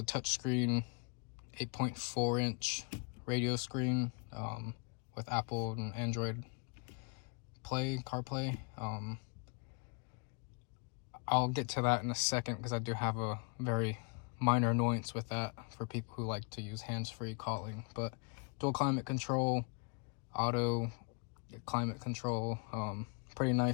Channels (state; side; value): quieter; right; 34.6 dB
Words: touchscreen 8.4-inch radio screen with Apple and Android CarPlay. I'll get to that in a second because I do have a very minor annoyance with that for people who like to use hands-free calling. But dual climate control, auto climate control, pretty